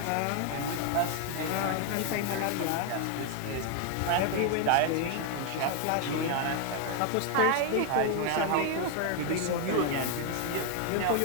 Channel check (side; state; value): both; different; correlation 0.01